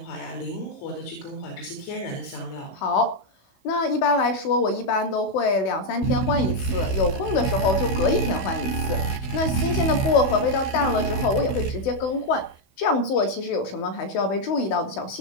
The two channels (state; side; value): late; right; 16 ms